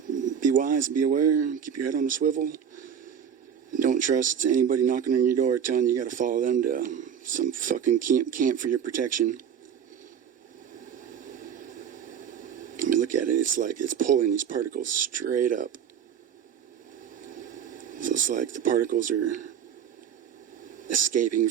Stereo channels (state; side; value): quieter; left; 8.3 dB